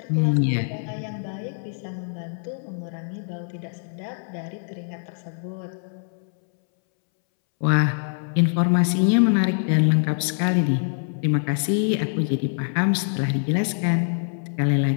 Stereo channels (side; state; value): right; silent; 63 dB below the other